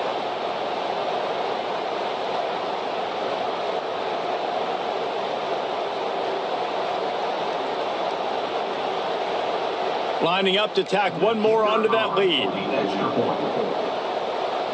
Lining up to tack one more onto that lead.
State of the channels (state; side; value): identical; both; correlation 1.00